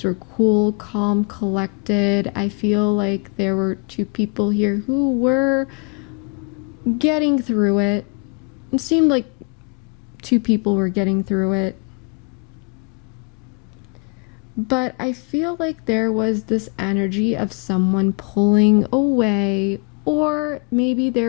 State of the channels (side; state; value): right; quieter; 36.9 dB